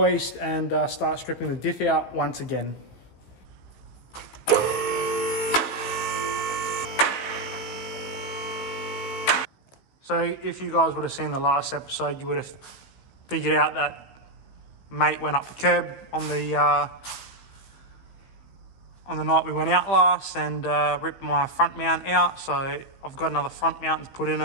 and start stripping the diff out once again. So if you guys would have seen the last episode, you would have figured out that mate went up the curb on the night we went out last and ripped my front mount out. So I've got another front mount to put in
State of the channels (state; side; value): late; right; 16 ms